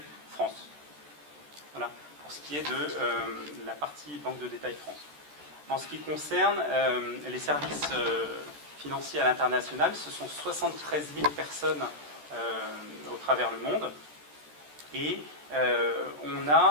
France. Voilà, pour ce qui est de la partie banque de détail France. En ce qui concerne les services financiers à l'international, ce sont 73 000 personnes au travers le monde. Et on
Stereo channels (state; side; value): late; left; 14 ms